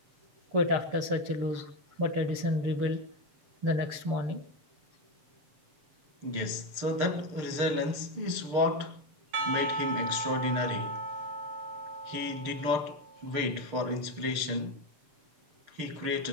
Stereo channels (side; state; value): left; late; 6.7 ms